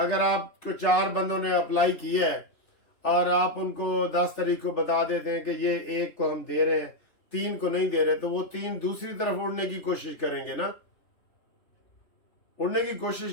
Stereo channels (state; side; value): late; right; 3.4 ms